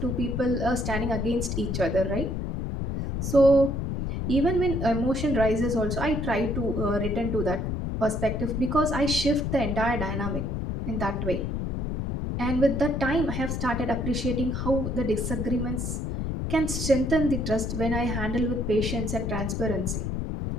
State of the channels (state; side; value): noise; left; rumble, 2 dB below the sound